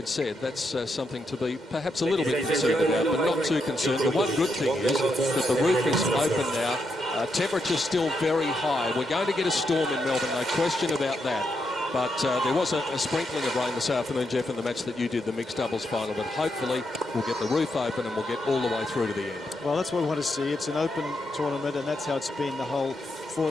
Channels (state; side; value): normal; both; correlation 0.82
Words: said, that's something to be perhaps a little bit concerned about, but not too concerned. The one good thing is that the roof is open now. Temperature's still very high. We're going to get a storm in Melbourne, no question about that. But there was a sprinkling of rain this afternoon, Jeff, in the match that you did, the mixed doubles final. But hopefully we'll get the roof open and we'll get all the way through to the end. Well, that's what we want to see. It's an open tournament, and that's how it's been the whole